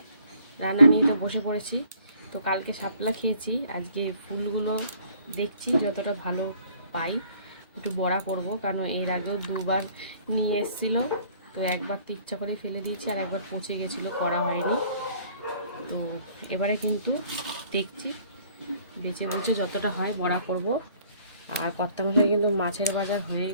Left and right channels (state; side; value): inverted; both; correlation -0.58